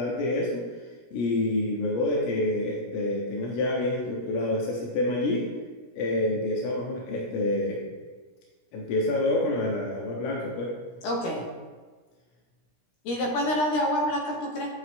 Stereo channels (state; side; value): late; right; 17 ms